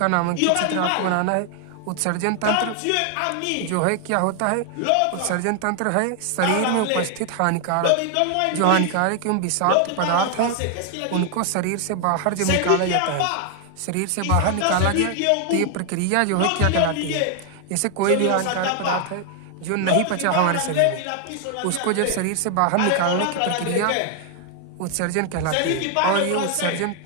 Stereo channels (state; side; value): different; both; correlation 0.00